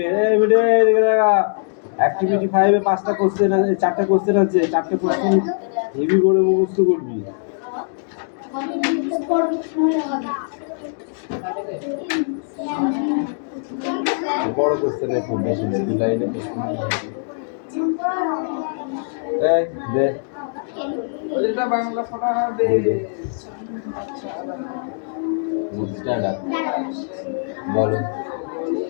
অ্যাক্টিভিটি 5 এ 5টা কোশ্চেন আছে 4টা কোশ্চেন আছে 4টা কোশ্চেন হেভি করে মুখস্থ করবি বড় কোশ্চেন খুব বেশি দে লাইনে এই দে ওইটা বাংলা পড়া হবে স্ট্যান্ড আপ বলো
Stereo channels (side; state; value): right; silent; digital silence